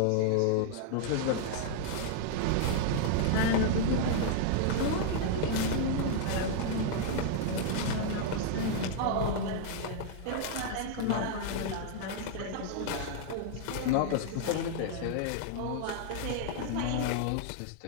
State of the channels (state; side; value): different; both; correlation -0.01